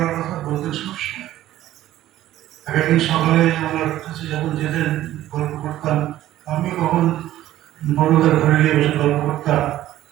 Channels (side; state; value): left; quieter; 13.9 dB